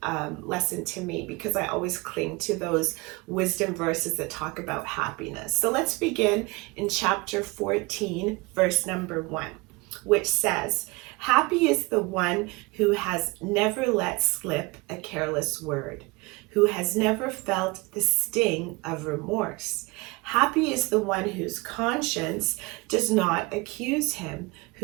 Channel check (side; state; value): left; quieter; 25.3 dB